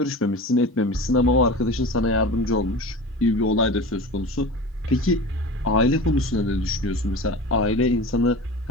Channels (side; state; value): both; normal; correlation 0.33